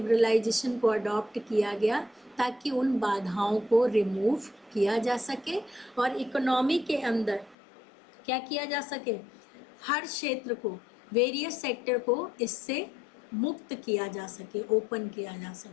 को अडॉप्ट किया गया ताकि उन बाधाओं को रिमूव किया जा सके और इकोनॉमी के अंदर क्या किया जा सके, हर क्षेत्र को, वेरियस सेक्टर को इससे मुक्त किया जा सके, ओपन किया जा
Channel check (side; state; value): right; drops out; at 7.6 s